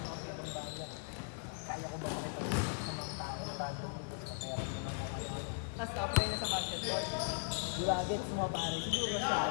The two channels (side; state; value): right; silent; digital silence